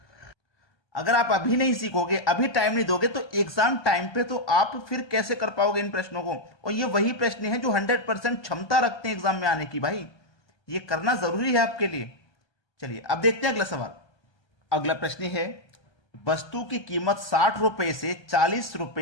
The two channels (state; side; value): late; right; 1.3 ms